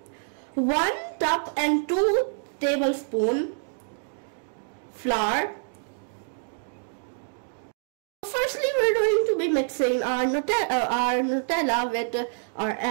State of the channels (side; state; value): left; silent; digital silence